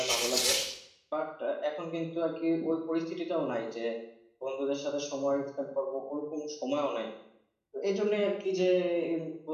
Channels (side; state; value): both; identical; correlation 1.00